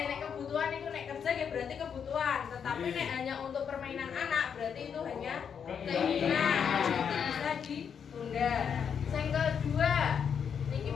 nek kebutuhan itu nek kerja ya berarti kebutuhan, tetapi nek hanya untuk permainan anak berarti itu hanya keinginan. Itu bisa ditunda. Yang kedua, niki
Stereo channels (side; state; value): right; quieter; 7.3 dB